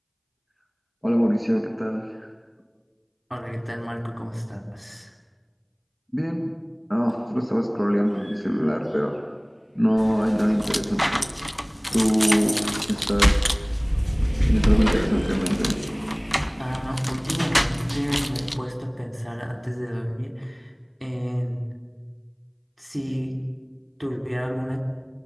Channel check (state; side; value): identical; both; correlation 1.00